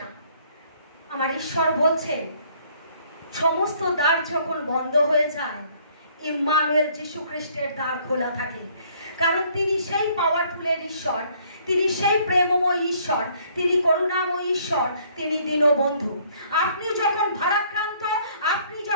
না। আমার ঈশ্বর বলছে সমস্ত দ্বার যখন বন্ধ হয়ে যায়, ইম্মানুয়েল যিশু খ্রিস্টের দ্বার খোলা থাকে। কারণ তিনি সেই পাওয়ারফুলের ঈশ্বর, তিনি সেই প্রেমময় ঈশ্বর, তিনি করুণাময় ঈশ্বর, তিনি দীনবন্ধু। আপনি যখন ভারাক্রান্ত, আপনি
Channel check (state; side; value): inverted; both; correlation -0.62